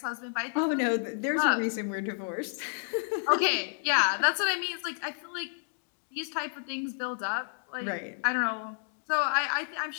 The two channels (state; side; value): silent; right; 57 dB below the other